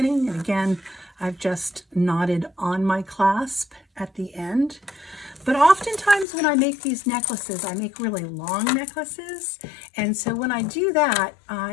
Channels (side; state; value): right; drops out; at 6.2 s